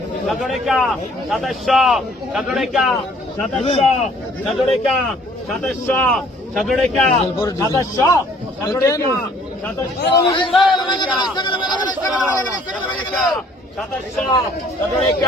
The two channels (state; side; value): normal; both; correlation 0.58